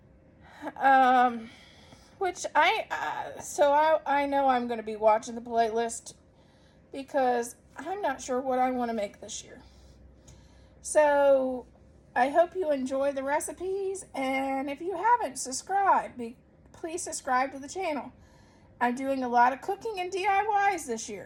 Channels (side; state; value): both; identical; correlation 1.00